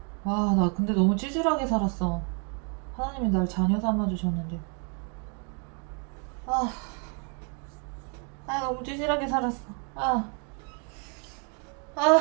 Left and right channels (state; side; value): quieter; left; 38.6 dB